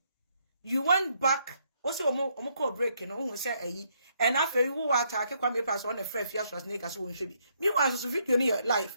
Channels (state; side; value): inverted; both; correlation -0.73